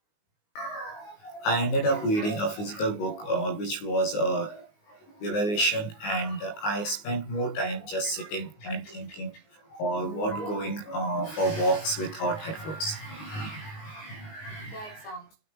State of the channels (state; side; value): late; right; 19 ms